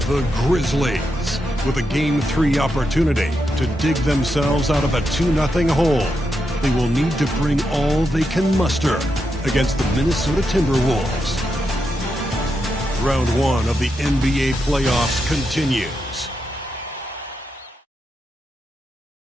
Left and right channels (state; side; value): normal; both; correlation 0.85